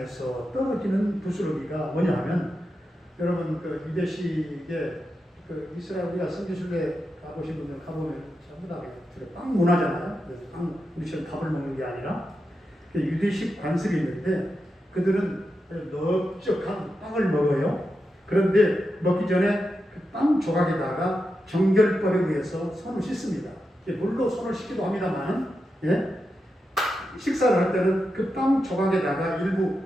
떨어지는 부스러기가 뭐냐면, 여러분 그 유대식의 그 이스라엘 우리가 성지순례 가보신 분들 가보면 전부 다 빵 문화잖아요. 빵 우리처럼 밥을 먹는 게 아니라 유대식 관습이 있는데 그들은 넓적한 빵을 먹어요. 그런데 먹기 전에 그 빵 조각에다가 정결법에 의해서 손을 씻습니다. 물로 손을 씻기도 합니다만, 예? 식사를 할 때는 그 빵 조각에다가 일부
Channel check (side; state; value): both; normal; correlation 0.88